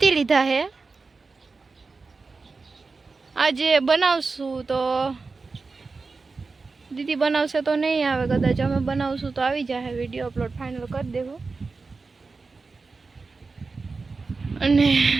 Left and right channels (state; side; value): quieter; left; 4.1 dB